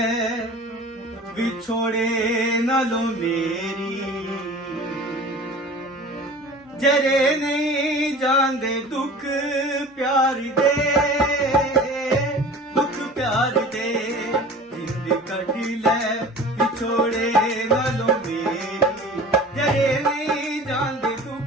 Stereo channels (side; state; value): both; normal; correlation 0.40